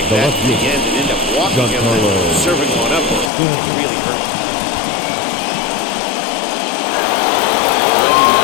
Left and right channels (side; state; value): right; drops out; at 3.3 s